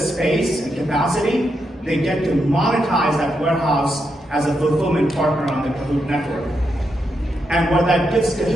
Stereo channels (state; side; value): normal; both; correlation 0.83